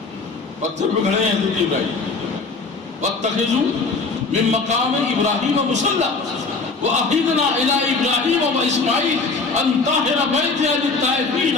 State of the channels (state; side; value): quieter; right; 4.1 dB